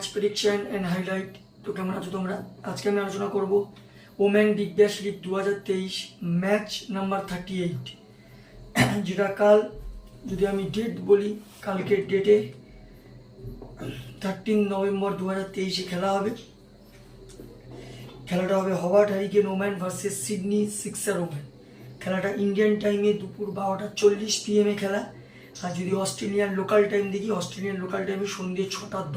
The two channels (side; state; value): both; identical; correlation 1.00